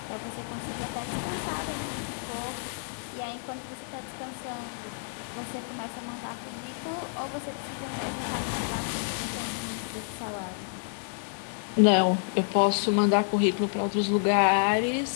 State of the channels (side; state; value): right; silent; 58 dB below the other